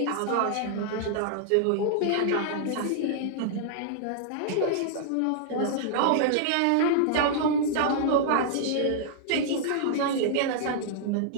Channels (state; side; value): different; both; correlation -0.01